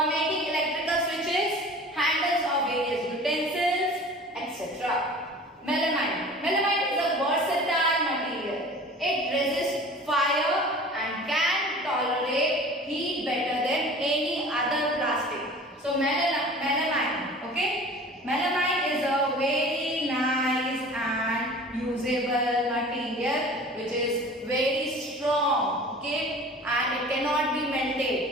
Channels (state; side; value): normal; both; correlation 0.42